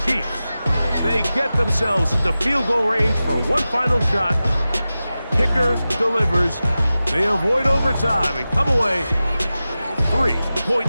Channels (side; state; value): both; inverted; correlation -0.95